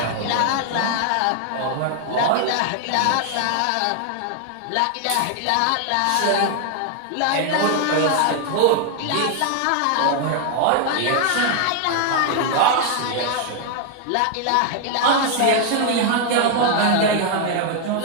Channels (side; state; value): both; different; correlation 0.00